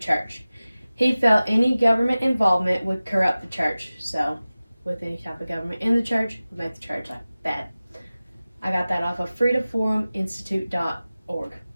He felt any government involvement would corrupt the church, so with any type of government in the church would make the church like bad. I got that off of freedomforuminstitute.org.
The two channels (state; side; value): inverted; both; correlation -0.97